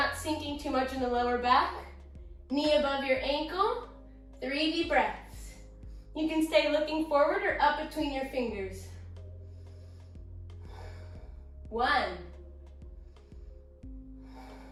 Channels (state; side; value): identical; both; correlation 1.00